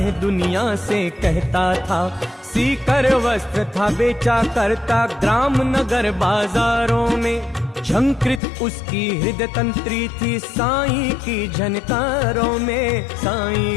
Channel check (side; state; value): right; drops out; at 8.4 s